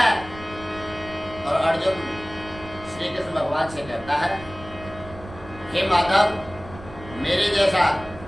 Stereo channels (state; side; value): noise; right; rumble, 16 dB below the sound